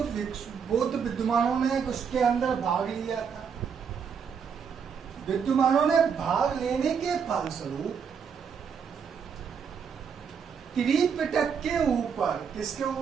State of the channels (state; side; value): quieter; left; 6.7 dB